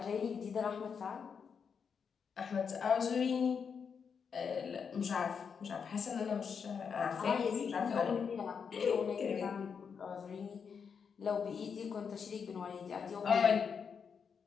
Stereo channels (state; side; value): quieter; right; 6.4 dB